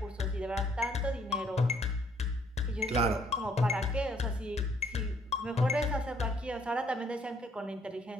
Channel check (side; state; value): both; normal; correlation 0.65